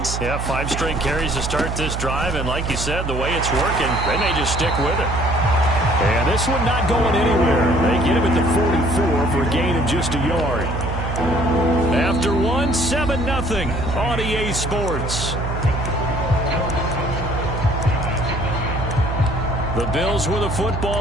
Yeah, 5 straight carries to start this drive. And like you said, the way it's working, they may just stick with it. And this one not going anywhere. They get him at the 44 for a gain of just a yard. After 1, 7-0 on EA Sports. The Bills with the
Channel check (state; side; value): noise; right; hum, 4 dB below the sound